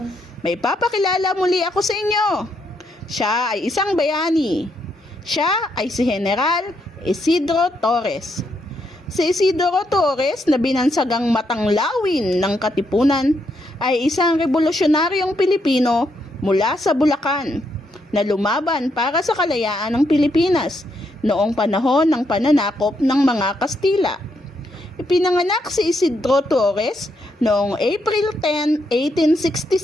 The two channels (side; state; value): both; normal; correlation 0.77